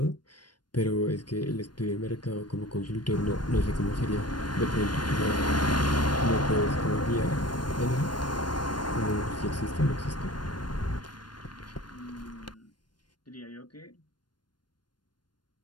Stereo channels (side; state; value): right; late; 0.71 ms